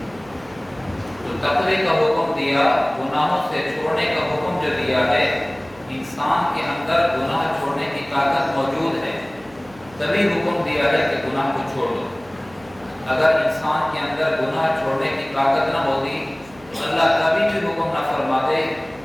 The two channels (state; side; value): noise; right; hum, 24 dB below the sound